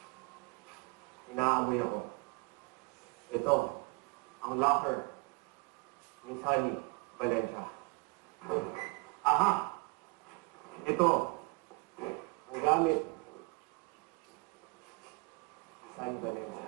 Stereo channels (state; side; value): quieter; left; 29.7 dB